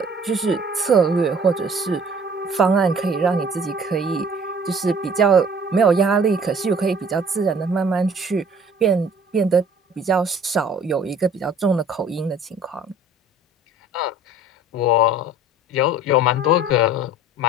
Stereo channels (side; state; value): both; normal; correlation 0.50